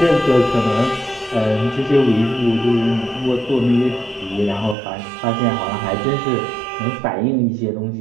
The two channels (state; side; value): drops out; left; at 4.8 s